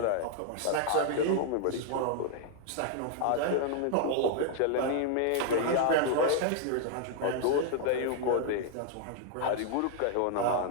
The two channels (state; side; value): different; both; correlation 0.00